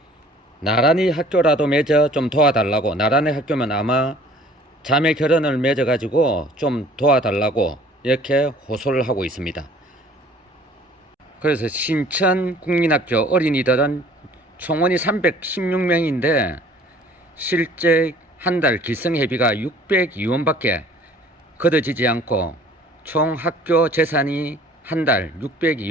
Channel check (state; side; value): normal; both; correlation 0.52